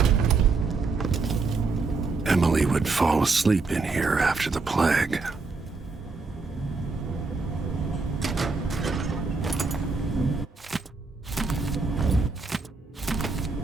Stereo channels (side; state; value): left; quieter; 4.1 dB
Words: Emily would fall asleep in here after the plague.